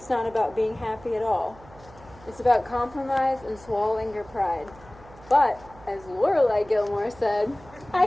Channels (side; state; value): right; noise; hum, 22 dB below the sound